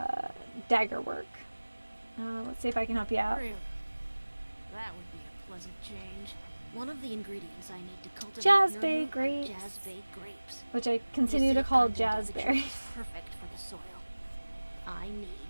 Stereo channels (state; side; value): inverted; both; correlation -1.00